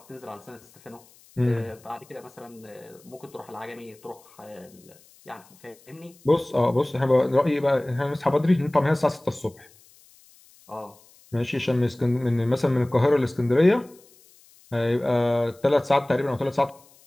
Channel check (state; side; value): noise; left; hiss, 28 dB below the sound